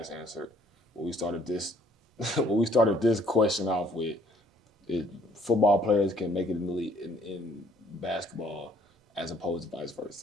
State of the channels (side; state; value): both; normal; correlation 0.63